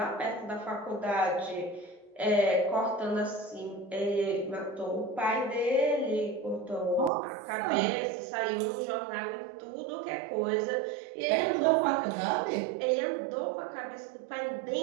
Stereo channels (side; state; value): left; drops out; at 7.1 s